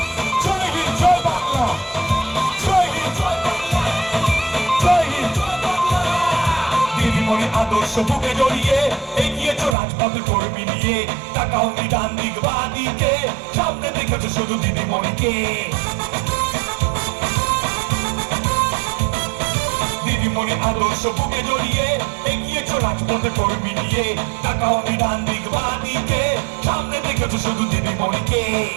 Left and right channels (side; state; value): left; drops out; at 9.8 s